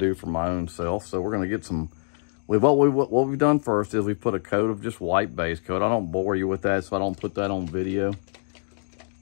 for my own self. So we're gonna get some, what we've done first is we put a coat of just white base coat. I don't bore you with that, so I don't put that on video.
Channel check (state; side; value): silent; right; digital silence